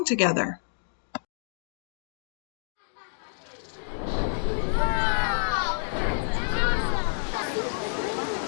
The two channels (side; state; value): right; silent; digital silence